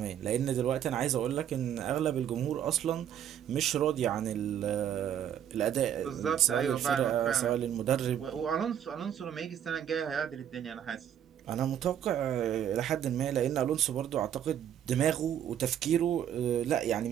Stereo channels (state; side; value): quieter; left; 9.8 dB